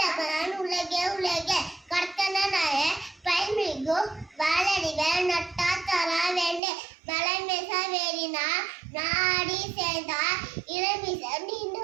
உலகே கர்த்தனாய பைமிகு வாழடிவ நட்டா தரா வேண்டு மலைமேச வேறினா நாடி சேர்ந்தா இளமிச நின்று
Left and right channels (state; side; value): drops out; left; at 6.6 s